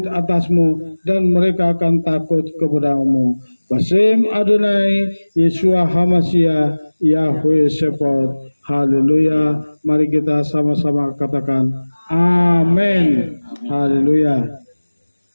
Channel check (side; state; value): both; inverted; correlation -1.00